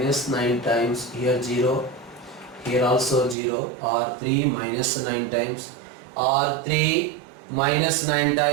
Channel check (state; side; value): drops out; left; at 3.4 s